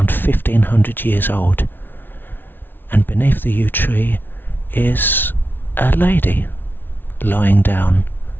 1500 years old, and beneath the yew tree is a lady lying down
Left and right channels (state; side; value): late; right; 0.098 ms